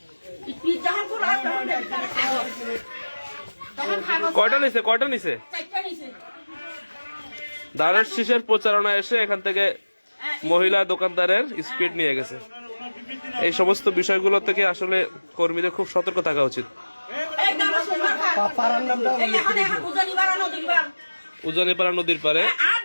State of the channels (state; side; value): inverted; both; correlation -1.00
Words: স্পিড যখন খোলা তখন দেখি তারা কাগজ। তখন কাগজ কয়টা নিছে? 4টা নিছে। দাঁড়ের শীষের প্রচারণা এসে এখান থেকে মহিলা দোকানদারের স্পিড নিয়ে গেছে। এই সমস্ত বিষয়গুলো থেকে আসলে কর্মীদের খুব সতর্ক থাকা উচিত। উজানিপাড়া নদীর পারে